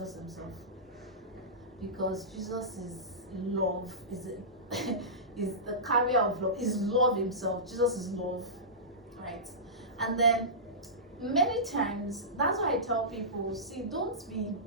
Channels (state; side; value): normal; both; correlation -0.19